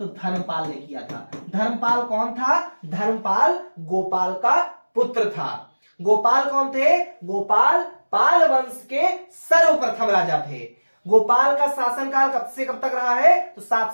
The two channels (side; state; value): both; inverted; correlation -1.00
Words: धर्मपाल ने किया था। धर्मपाल कौन था? धर्मपाल गोपाल का पुत्र था। गोपाल कौन थे? गोपाल पाल वंश के सर्वप्रथम राजा थे। गोपाल का शासनकाल कब से कब तक रहा है? तो